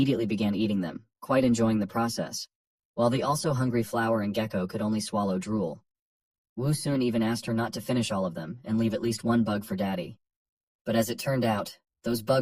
began eating them, quite enjoying the process, while the also hungry flower and gecko could only swallow drool. Wu Sun even asked her not to finish all of them and leave at least one bug for Daddy. But as it turned out, those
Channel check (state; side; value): identical; both; correlation 1.00